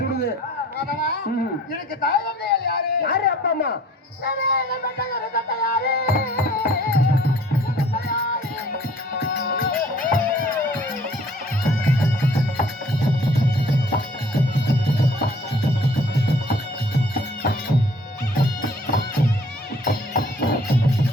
சுடுது. மாதவா, ம். எனக்கு தாய் தந்தையார் யாரு? யாரு அப்பா அம்மா? யாரு?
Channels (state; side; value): normal; both; correlation 0.54